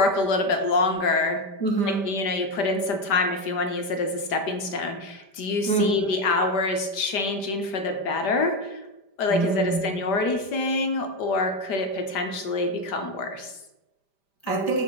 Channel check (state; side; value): late; right; 5.1 ms